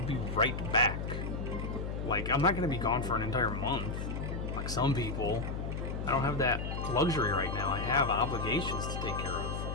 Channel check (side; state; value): left; noise; hum, 4 dB below the sound